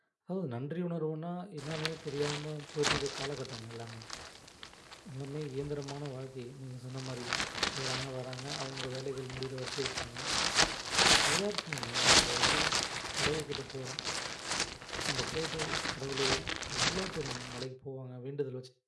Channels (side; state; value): both; identical; correlation 1.00